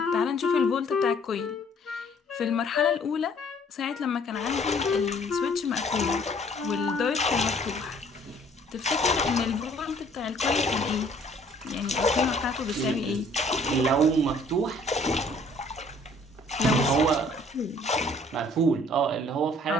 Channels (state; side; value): normal; both; correlation 0.58